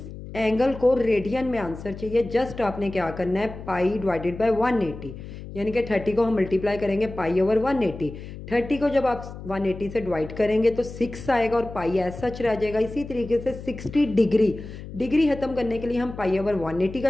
एंगल को रेडियन में आंसर चाहिए। जस्ट आपने क्या करना है, पाई डिवाइडेड बाय 180, यानी कि 30 को हम मल्टीप्लाई करेंगे पाई ओवर 180। 30 को जब आप 180 से डिवाइड करेंगे तो 6 आएगा और पाई एज सच रह जाएगा। इसी तरीके से 60 डिग्री खत्म करने के लिए हम पाई ओवर 180 का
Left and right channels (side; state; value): left; noise; hum, 12 dB below the sound